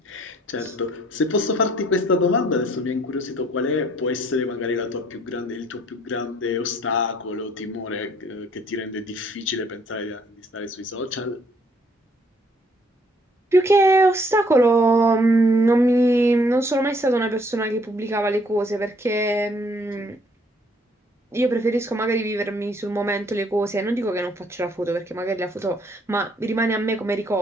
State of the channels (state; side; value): normal; both; correlation 0.63